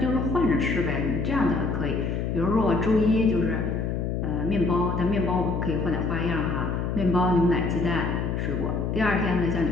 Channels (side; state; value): left; noise; hum, 1 dB below the sound